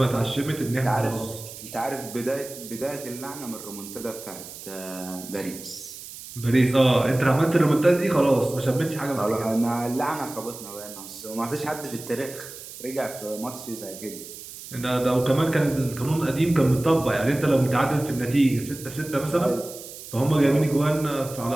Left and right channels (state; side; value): noise; right; hiss, 14 dB below the sound